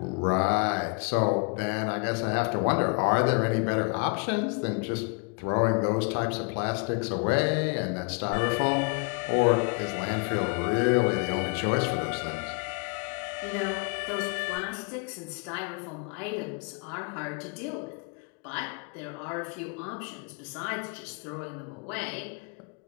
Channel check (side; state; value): right; quieter; 34.4 dB